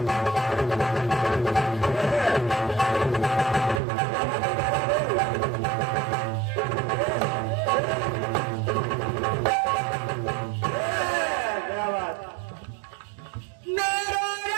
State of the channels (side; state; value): left; drops out; at 3.8 s